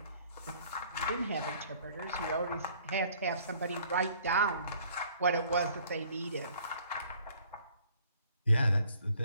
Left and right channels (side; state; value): both; inverted; correlation -0.58